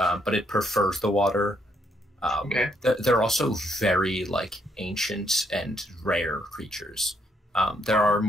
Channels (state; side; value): normal; both; correlation 0.73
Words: it prefers the water. Okay. They're also very ancient and rare creatures. There are